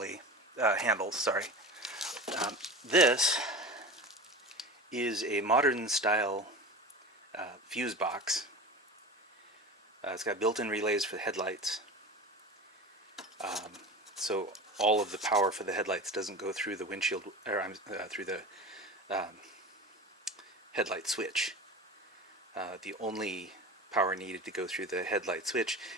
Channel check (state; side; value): normal; both; correlation 0.31